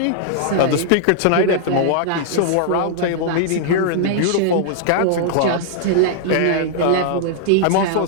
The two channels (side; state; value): both; different; correlation -0.01